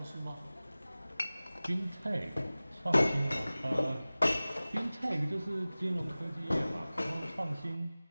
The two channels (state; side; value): inverted; both; correlation -0.98